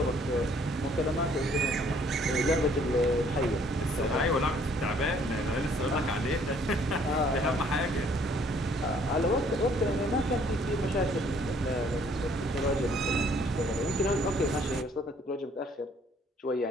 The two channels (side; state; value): both; normal; correlation 0.61